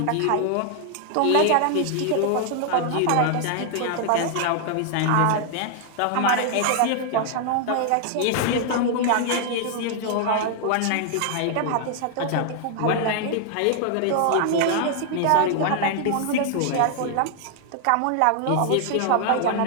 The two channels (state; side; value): different; both; correlation 0.00